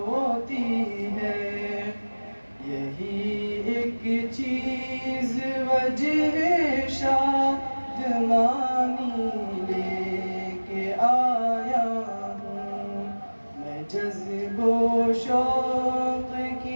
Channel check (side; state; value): both; inverted; correlation -1.00